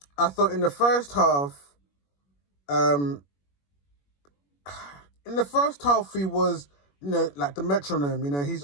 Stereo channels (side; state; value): right; late; 21 ms